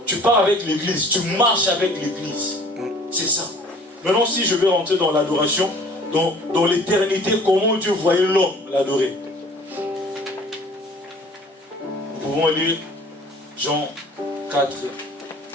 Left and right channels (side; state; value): both; normal; correlation 0.50